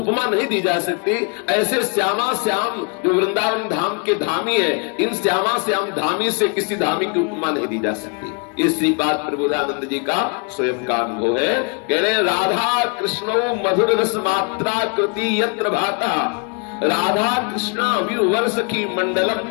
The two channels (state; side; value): quieter; right; 35.8 dB